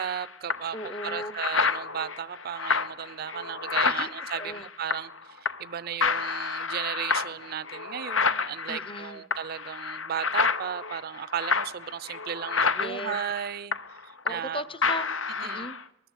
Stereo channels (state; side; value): normal; both; correlation 0.10